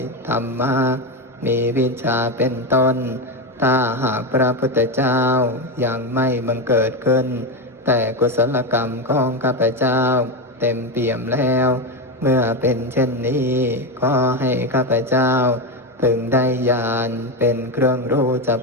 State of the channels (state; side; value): normal; both; correlation 0.13